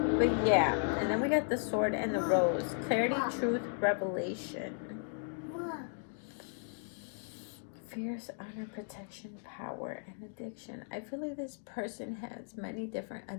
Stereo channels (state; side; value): silent; right; digital silence